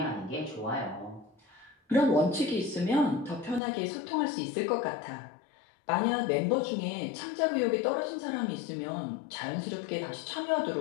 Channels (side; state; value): right; drops out; at 3.6 s